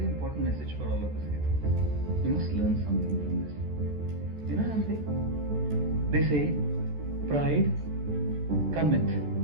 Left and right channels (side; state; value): left; late; 14 ms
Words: important message for all of us here. We must learn something from this. You know what I'm saying? They say, pride cometh